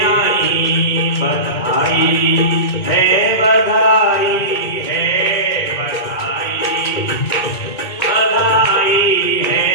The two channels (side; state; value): right; late; 2.2 ms